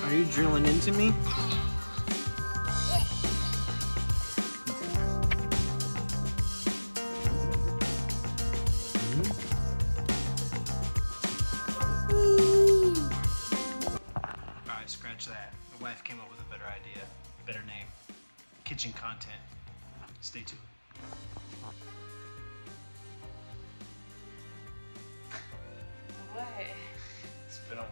Are you drilling into me? Alright, scratch that. My wife came up with a better idea, better name. Kitchen content. Stay tuned. What? It's been a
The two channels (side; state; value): both; inverted; correlation -1.00